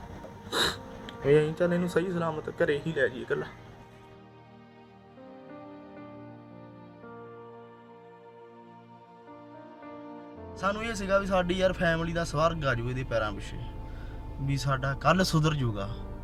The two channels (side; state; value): both; identical; correlation 1.00